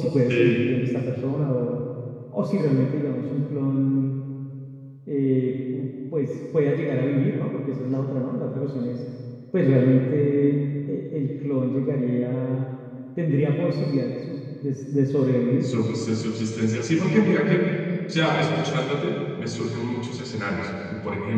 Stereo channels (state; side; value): identical; both; correlation 1.00